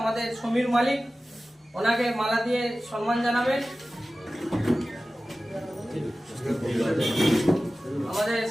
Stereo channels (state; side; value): normal; both; correlation 0.96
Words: আমাদের সমীর মালিক ওনাকে মালা দিয়ে সম্মান জানাবেন আমাদের